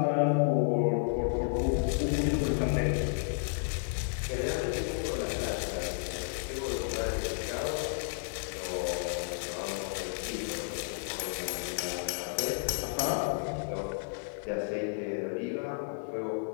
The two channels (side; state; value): right; silent; 56 dB below the other